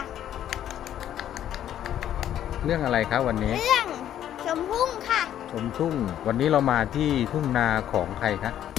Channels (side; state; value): right; quieter; 11.0 dB